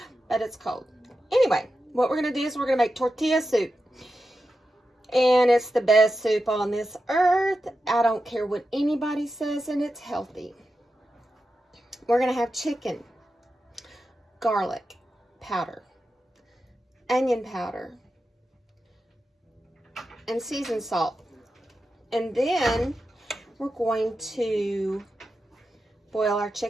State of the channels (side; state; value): both; normal; correlation 0.90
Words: but it's cold. Anyway, what we're going to do is we're going to make tortilla soup. And it's the best soup on this earth. I don't care what anybody says, and it's healthy. We're going to have chicken, garlic powder, onion powder, and seasoned salt. And then we're going to boil our